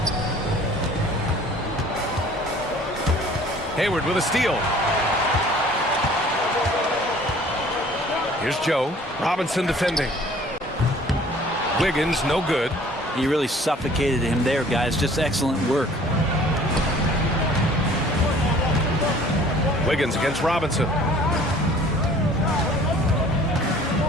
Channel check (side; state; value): both; normal; correlation 0.52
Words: Hayward with a steal. Here's Joe. Robinson defending. Wiggins, no good. He really suffocated him there, guys. Just excellent work. Wiggins against Robinson.